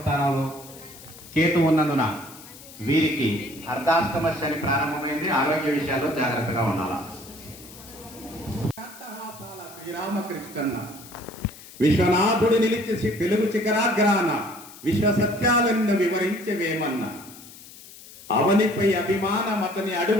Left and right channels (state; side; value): noise; left; hiss, 18 dB below the sound